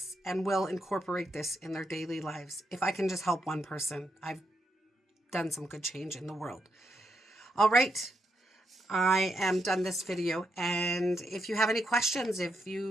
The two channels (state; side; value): normal; both; correlation 0.81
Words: and will incorporate this in their daily lives. If I can just help one person, I've done some good change in the world. All right. I am done this video. And if you have any questions, if